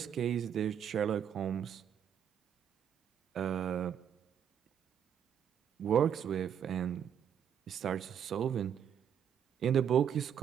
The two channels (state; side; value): quieter; left; 8.7 dB